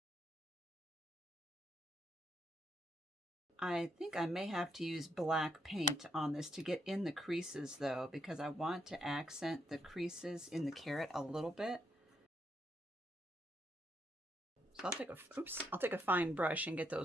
I think I may have to use black paint on this to get in the creases though, because I want to accent the creases in the carrot a little bit. So I'll take a fine brush and get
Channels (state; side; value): normal; both; correlation 0.77